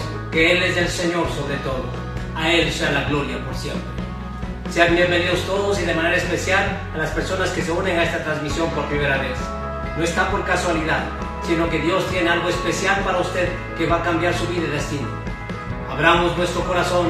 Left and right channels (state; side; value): identical; both; correlation 1.00